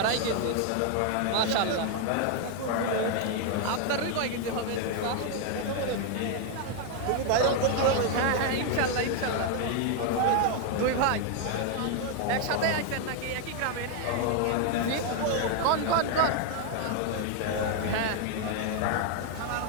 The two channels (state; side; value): different; both; correlation 0.01